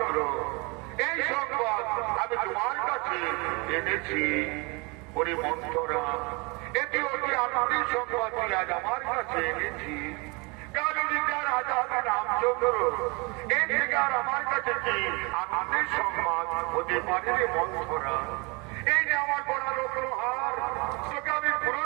এই সংবাদ আমি তোমার কাছে এনেছি। ওরে মন্থরা, এটি অতি আনন্দের সংবাদ আজ আমার কাছে এনেছি। কালীনগর রাজা হবে রামচন্দ্র, এর থেকে আর আমার কাছে কি আনন্দের সংবাদ হতে পারে রে মন্থরা? এই যে আমার বড় রত্নহার, তোকে আমি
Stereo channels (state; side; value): quieter; left; 28.8 dB